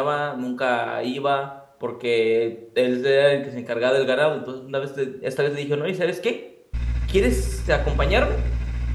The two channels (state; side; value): identical; both; correlation 1.00